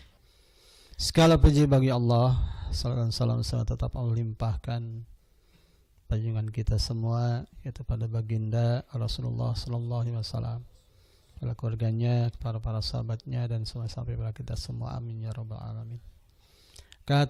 Segala puji bagi Allah, salam tetap Allah limpahkan junjungan kita semua, yaitu pada baginda Rasulullah sallallahu alaihi wasallam, pada keluarganya, para sahabatnya, dan semua sampai pada kita semua. Amin ya rabbal alamin.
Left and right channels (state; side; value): identical; both; correlation 1.00